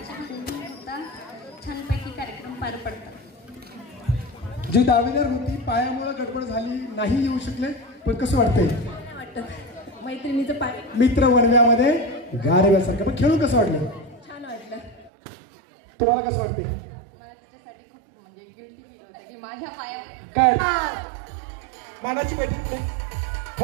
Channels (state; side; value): drops out; left; at 15.1 s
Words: भांडण न होता छानपैकी कार्यक्रम पार पडतात. जी दावेदार होती पायामुळे गडबड झाली, नाही येऊ शकले, पण कसं वाटतंय? वाटतं मैत्रिणीचं पाय मित्र वणव्यामध्ये गारव्यासारखं. पण खेळून कसं वाटलं? छान वाटलं. तुम्हाला कसं वाटते? मला तिच्यासाठी खूप म्हणजे गिल्टी फील होतं की माझ्या पायावर काय मानाची बैठक